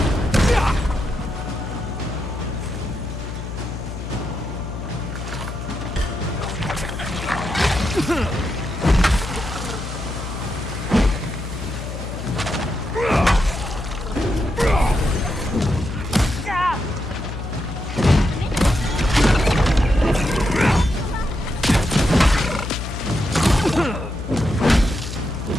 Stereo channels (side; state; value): left; noise; hum, 7 dB below the sound